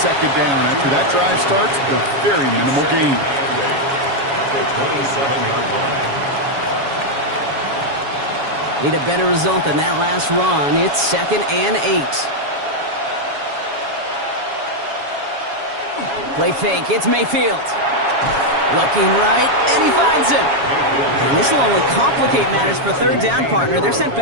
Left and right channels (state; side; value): late; left; 7.2 ms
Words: down. After that drive starts, a very minimal gain. At the 27-yard line. Need a better result than that last run. It's 2nd and 8. Play fake. It's Mayfield. Looking right, and he finds him. And this will only complicate matters for third down, partner. They're sent